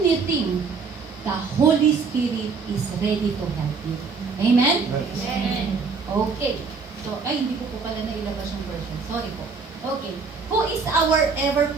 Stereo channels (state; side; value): quieter; left; 5.0 dB